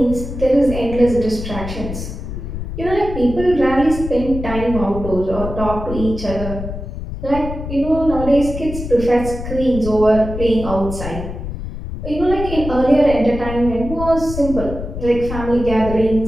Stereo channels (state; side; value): noise; left; rumble, 7 dB below the sound